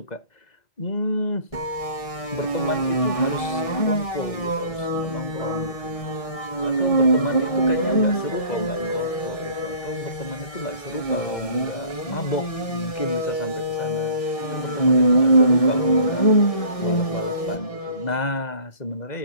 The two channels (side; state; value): right; late; 1.6 ms